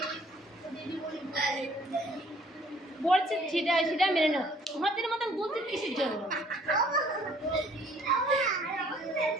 বলছে সেটা মেনে নাও। হাতের মতন বলছে কিসের জন্য?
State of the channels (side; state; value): both; normal; correlation 0.58